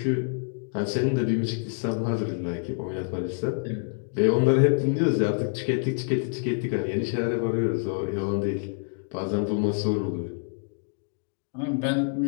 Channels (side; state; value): right; silent; digital silence